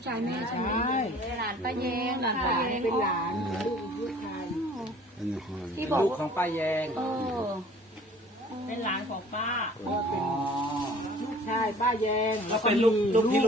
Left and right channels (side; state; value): both; normal; correlation 0.50